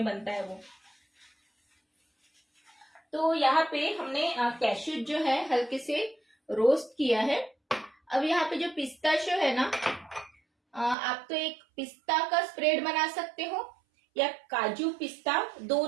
बनता है वो। तो यहाँ पे हमने कैश्यू जो है हल्के से रोस्ट किया है। अब यहाँ पे जो पिस्ताशियो है ना, आप तो एक पिस्ता का स्प्रेड बना सकते हो या काजू पिस्ता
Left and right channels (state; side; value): drops out; left; at 11.0 s